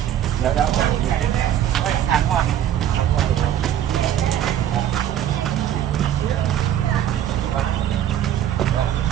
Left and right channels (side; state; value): left; quieter; 10.8 dB